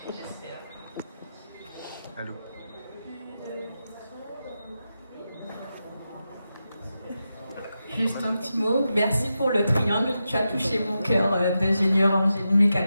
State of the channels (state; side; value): inverted; both; correlation -0.89